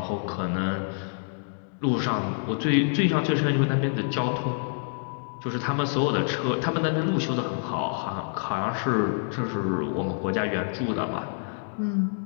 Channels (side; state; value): right; silent; digital silence